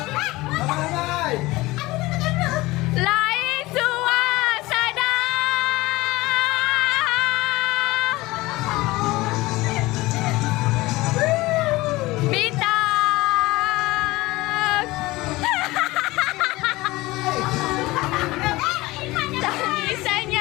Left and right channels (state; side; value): quieter; right; 20.1 dB